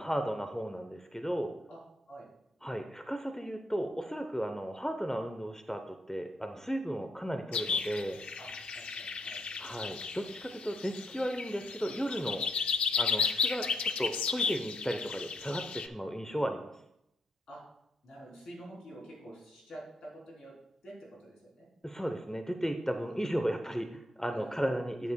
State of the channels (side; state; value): both; normal; correlation 0.76